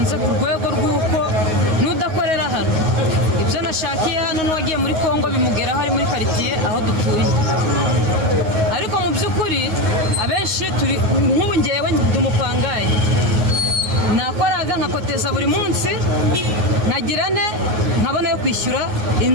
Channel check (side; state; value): left; late; 9.5 ms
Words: ku rwego rw'uko nudakorera hano ibyo nashakiye hano n'uwagiye muri Kongo bimugera hari muri quartier aho dutuye. Ariko mu by'ukuri abenshi turi nk'ubu ngewe ndumupangaye nakoraga nkakoteza buri munsi nkagirane nkabona yo kwishyura